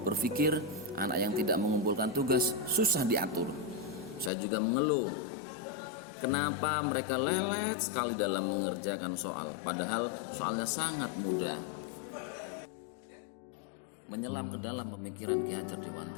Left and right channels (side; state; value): right; drops out; at 4.3 s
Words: berpikir anak yang tidak mengumpulkan tugas susah diatur. Saya juga mengeluh, kenapa mereka lelet sekali dalam mengerjakan soal, padahal soalnya sangat mudah. Menyelam ke dalam pemikiran Ki Hajar